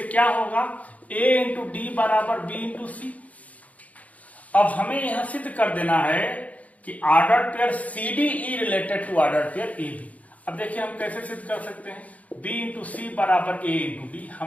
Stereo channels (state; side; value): late; right; 0.070 ms